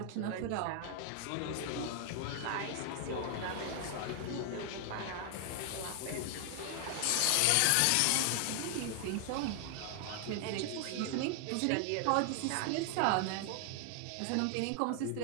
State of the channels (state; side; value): different; both; correlation 0.00